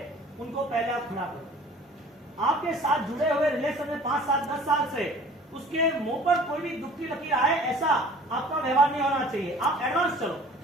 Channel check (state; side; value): normal; both; correlation 0.48